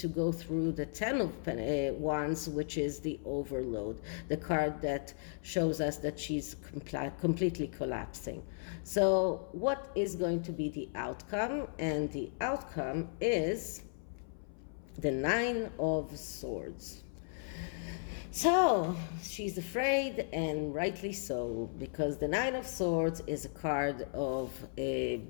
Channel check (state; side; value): silent; right; 54 dB below the other